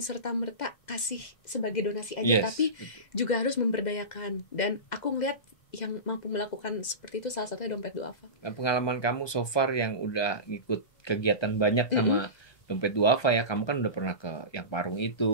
serta-merta kasih sebagai donasi aja, yes. tapi juga harus memberdayakan. Dan aku ngeliat yang mampu melakukan seperti itu salah satunya Dompet Duafa. Nah, pengalaman kamu so far yang udah ngikut kegiatan banyak sama Dompet Duafa ya, kamu kan udah pernah ke yang Parung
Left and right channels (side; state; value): right; late; 2.0 ms